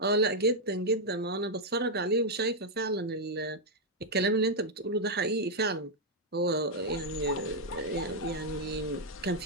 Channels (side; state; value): both; normal; correlation -0.02